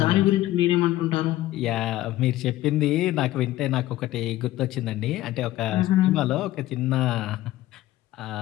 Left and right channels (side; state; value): right; quieter; 15.4 dB